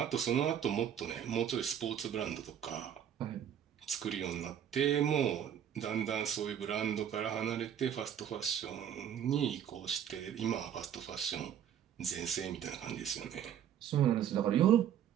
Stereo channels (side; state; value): left; quieter; 9.5 dB